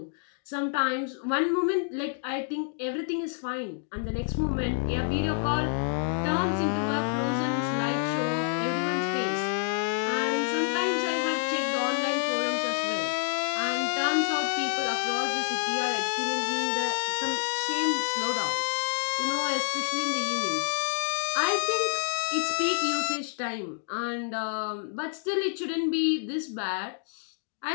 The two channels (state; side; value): silent; right; digital silence